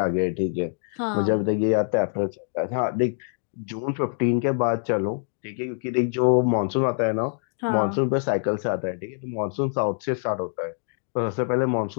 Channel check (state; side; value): silent; right; digital silence